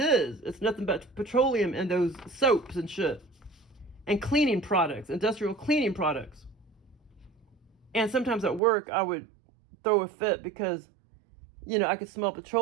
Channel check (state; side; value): drops out; left; at 8.6 s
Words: It's nothing but petroleum in those soaps and shit. And cleaning products, industrial cleaning products. And sometimes at work, I would throw a fit because, I could smell